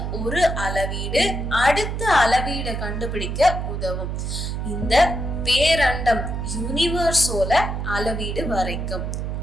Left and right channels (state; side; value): noise; right; hum, 3 dB below the sound